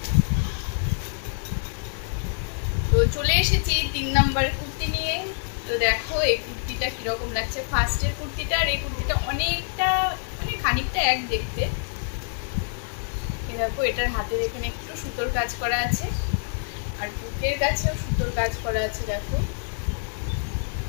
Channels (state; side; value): silent; right; digital silence